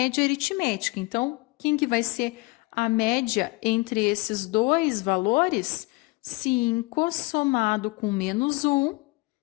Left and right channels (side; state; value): right; quieter; 25.3 dB